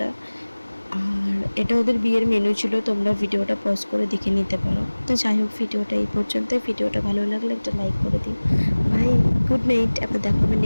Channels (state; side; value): inverted; both; correlation -1.00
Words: আর এটা ওদের বিয়ের মেনু ছিল, তোমরা ভিডিওটা পজ করে দেখে নিতে পারো। তো যাই হোক, ভিডিওটা এই পর্যন্ত। ভিডিওটা ভালো লাগলে একটা লাইক করে দিও। Bye, good night. আবার দেখা হবে